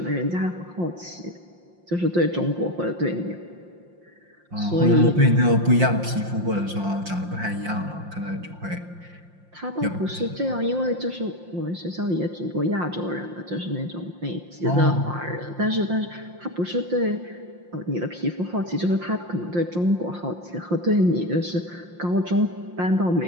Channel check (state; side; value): late; left; 5.7 ms